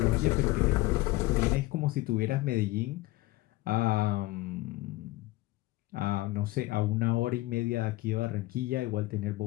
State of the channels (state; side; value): quieter; right; 19.1 dB